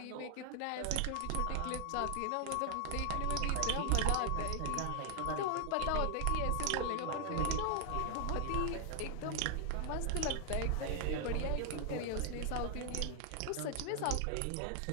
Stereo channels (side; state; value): both; different; correlation 0.00